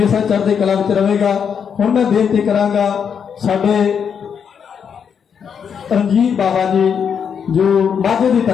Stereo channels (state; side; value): quieter; right; 7.2 dB